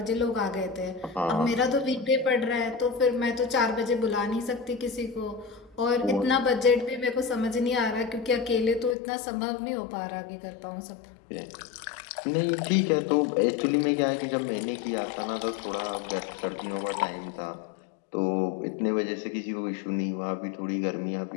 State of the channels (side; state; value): right; drops out; at 9.0 s